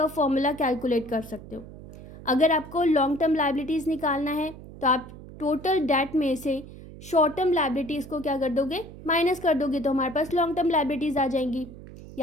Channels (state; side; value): noise; right; hum, 16 dB below the sound